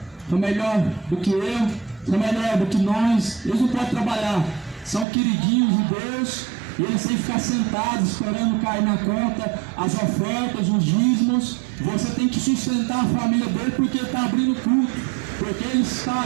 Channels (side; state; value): left; drops out; at 5.1 s